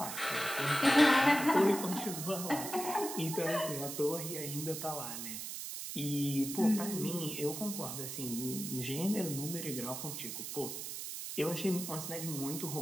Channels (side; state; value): right; noise; hiss, 6 dB below the sound